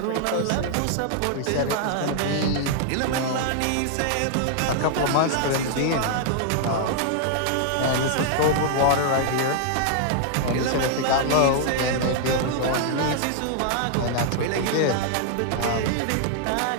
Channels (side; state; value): both; different; correlation -0.01